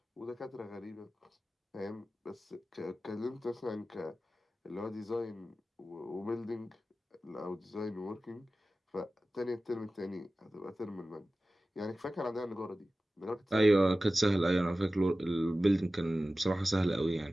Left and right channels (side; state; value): both; normal; correlation 0.95